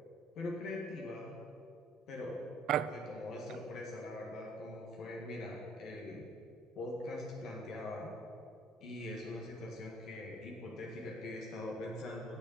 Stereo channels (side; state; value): both; normal; correlation 0.59